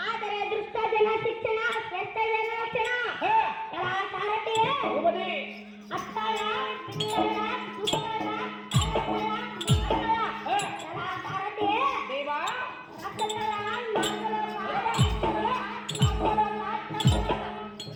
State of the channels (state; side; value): identical; both; correlation 1.00